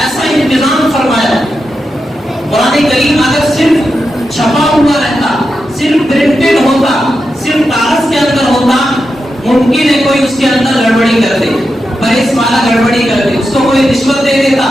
ایسا انتظام فرمایا. قرآن کریم اگر صرف چھپا ہوا رہتا، صرف پرنٹڈ ہوتا، صرف کاغذ کے اندر ہوتا، ممکن ہے کوئی اس کے اندر گڑبڑی کر دے، پریس والا گڑبڑی کر دے، اس کو کوئی رشوت دے دیتا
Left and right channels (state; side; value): normal; both; correlation 0.88